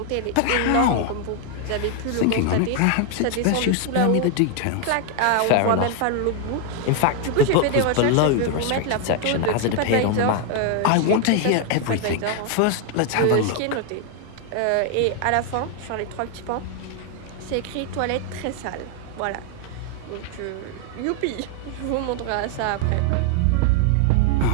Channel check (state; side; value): different; both; correlation 0.00